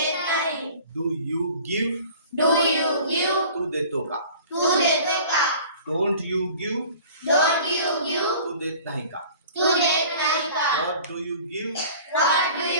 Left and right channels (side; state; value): both; inverted; correlation -0.45